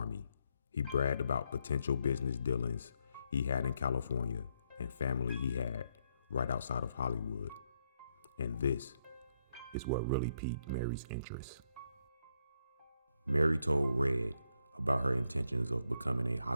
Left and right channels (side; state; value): both; inverted; correlation -0.78